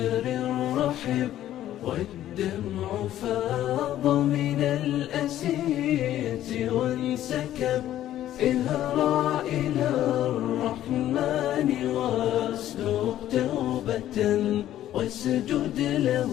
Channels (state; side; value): quieter; right; 12.6 dB